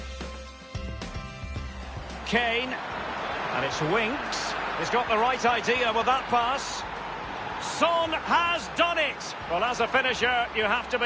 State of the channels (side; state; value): both; identical; correlation 1.00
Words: Kane. And it's Winks. He's got the right idea with that pass. Son has done it. Well, as a finisher, you have to